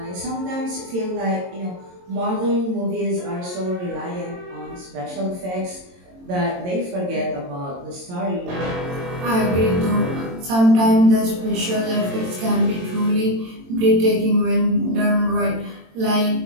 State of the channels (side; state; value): left; late; 22 ms